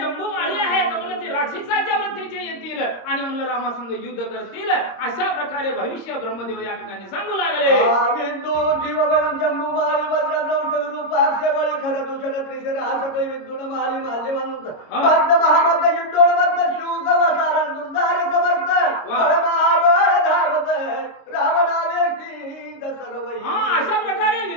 माळी आहेत म्हणलं ते राक्षसाच्या वृत्तीचे येतील आणि म्हणलं रामासंग युद्ध करतील. अशा प्रकारे भविष्य ब्रह्मदेव या ठिकाणी सांगू लागले. विंदू जीवबळं जम्बू माळी वज्रद्रौत विरूपाक्ष बळी खर दूषण त्रिशर आसकळी विद्युन माळी माल्यवंत बद्ध महामद्ध युद्धोणबद्ध शूक वसारण दुर्धार समस्त बळमाबळ धावत रावणावेष्टी दसरवई. अशा प्रकारे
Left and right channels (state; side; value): late; right; 26 ms